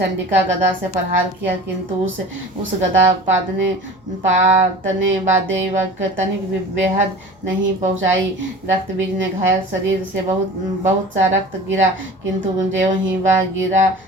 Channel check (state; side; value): noise; left; hum, 30 dB below the sound